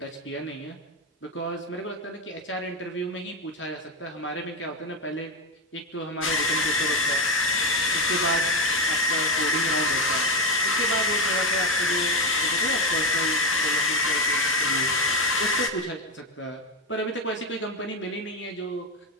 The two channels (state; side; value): normal; both; correlation 0.11